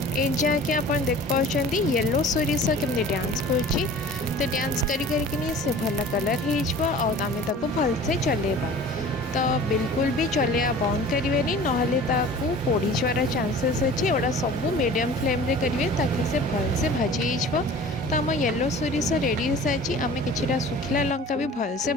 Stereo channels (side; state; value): both; normal; correlation 0.43